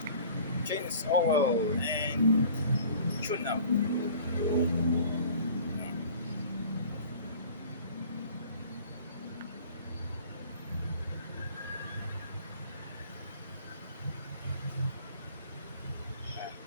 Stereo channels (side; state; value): both; inverted; correlation -0.47